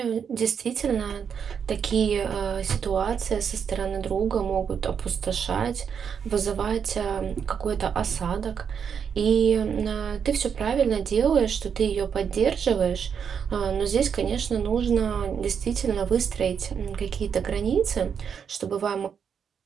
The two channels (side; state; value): left; quieter; 7.1 dB